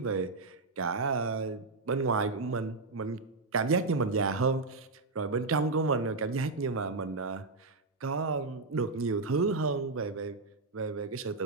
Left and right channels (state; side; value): quieter; left; 3.7 dB